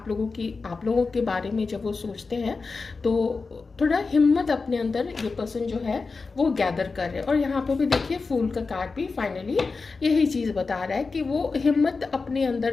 लोगों के बारे में। जब वो सोचते हैं तो थोड़ा हिम्मत अपने अंदर ये पर्सन जो है वो गैदर कर रहे हैं। और यहाँ पे भी देखिए फूल का कार्ड भी फाइनली यही चीज़ बता रहा है कि वो हिम्मत अपने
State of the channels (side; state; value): right; quieter; 4.3 dB